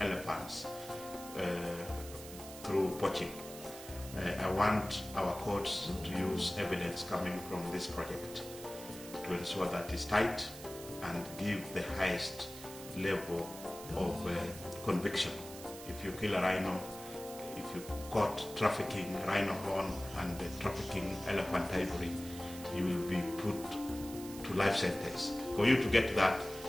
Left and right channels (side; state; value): right; noise; hiss, 14 dB below the sound